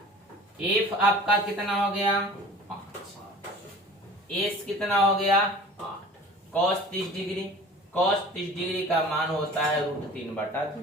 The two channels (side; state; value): both; normal; correlation 0.43